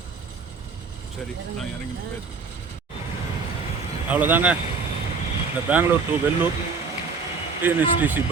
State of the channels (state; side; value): quieter; left; 4.8 dB